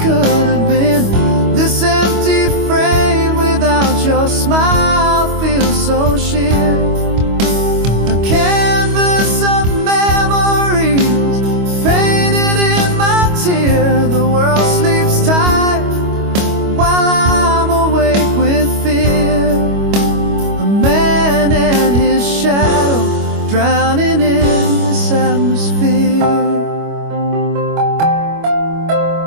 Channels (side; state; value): left; late; 25 ms